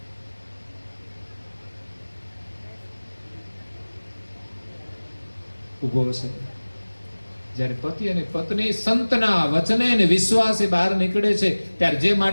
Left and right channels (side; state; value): both; inverted; correlation -1.00